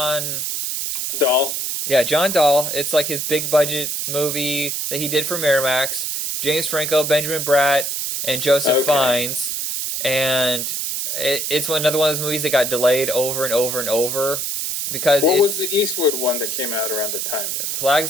Dahl. Yeah, John Dahl. It's like his big budget movie that he did for Miramax. James Franco, Benjamin Bratt, and Joseph Fiennes. And it's another one of those movies that got delayed over and over and over. Because what was the Eastwood one that came out around the time?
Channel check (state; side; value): noise; right; hiss, 2 dB below the sound